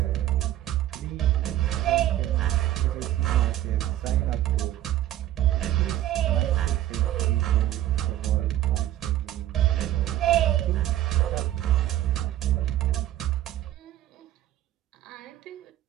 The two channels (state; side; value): quieter; left; 13.3 dB